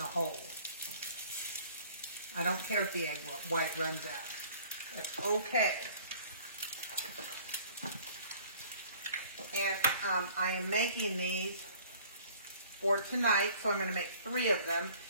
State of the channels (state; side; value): inverted; both; correlation -0.53